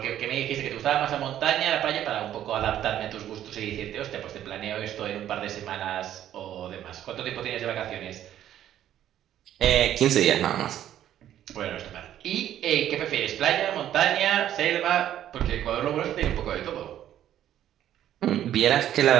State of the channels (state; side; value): quieter; left; 11.4 dB